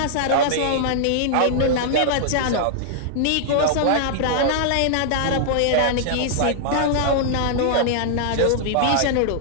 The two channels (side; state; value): both; different; correlation -0.01